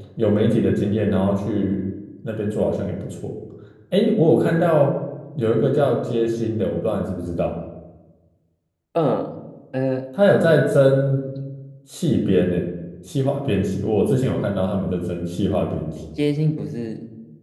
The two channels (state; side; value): identical; both; correlation 1.00